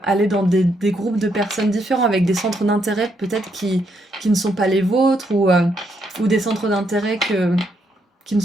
aller dans des groupes de personnes différents, avec des centres d'intérêt peut-être qui ne sont pas les vôtres, ou des centres d'intérêt qui ne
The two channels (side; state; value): both; normal; correlation 0.76